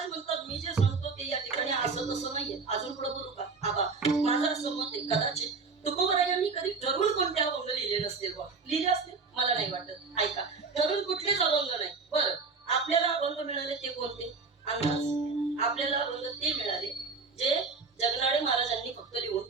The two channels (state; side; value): quieter; left; 4.5 dB